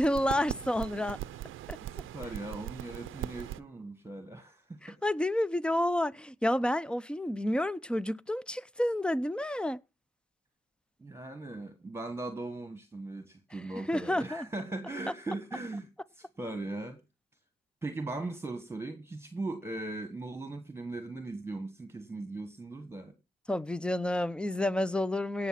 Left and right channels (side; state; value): both; normal; correlation 0.88